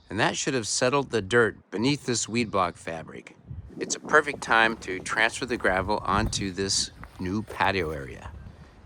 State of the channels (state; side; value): identical; both; correlation 1.00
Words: and that should have settled the dirt beneath this weed block fabric. It's a perfect time to transfer the gravel onto this new patio area.